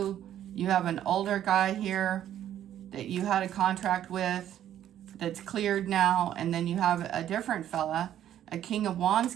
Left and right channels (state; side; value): quieter; left; 11.2 dB